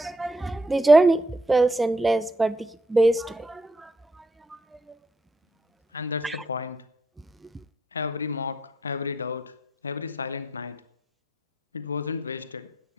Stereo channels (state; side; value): normal; both; correlation 0.77